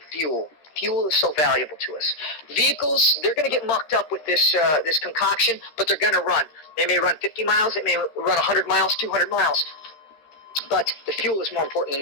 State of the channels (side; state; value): right; late; 13 ms